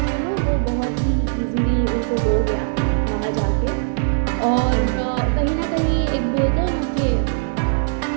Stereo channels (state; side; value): silent; left; digital silence